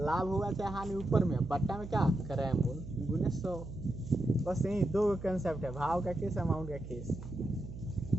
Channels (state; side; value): noise; right; hum, 11 dB below the sound